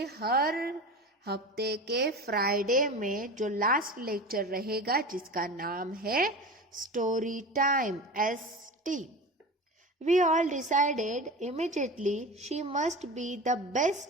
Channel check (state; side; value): normal; both; correlation 0.31